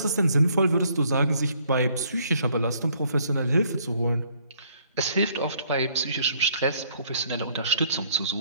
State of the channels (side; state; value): both; inverted; correlation -0.65